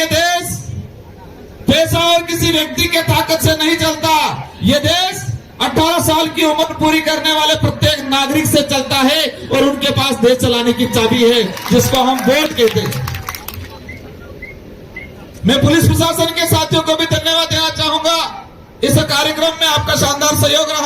देश पैसा और किसी व्यक्ति के ताकत से नहीं चलता। ये देश 18 साल की उम्र पूरी करने वाले प्रत्येक नागरिक से चलता है और उनके पास देश चलाने की चाबी है, जिसको हम वोट कहते हैं। मैं पुलिस प्रशासन के साथियों को भी धन्यवाद देना चाहूंगा। इस कार्यक्रम में आपका शानदार सहयोग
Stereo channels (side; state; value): both; identical; correlation 1.00